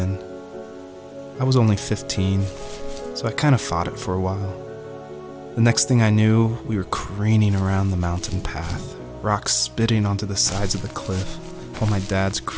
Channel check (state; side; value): identical; both; correlation 1.00